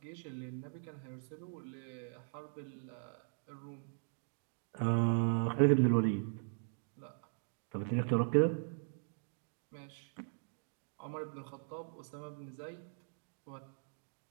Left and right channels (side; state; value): left; silent; digital silence